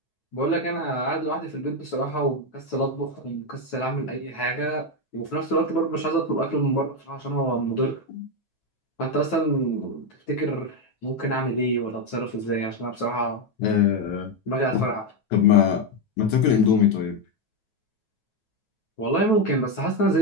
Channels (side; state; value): right; late; 9.3 ms